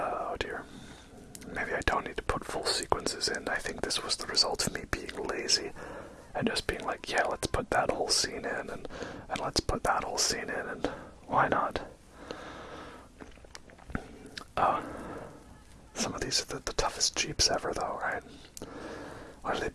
dear. Maybe I don't need to put full sequences in. I think this was the result of me being lazy and just being like, yeah, let's put that whole scene in, and let's put that whole scene in, and why not? Some of these are the toughest Jeeps ever, though, right? Why do they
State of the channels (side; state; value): both; identical; correlation 1.00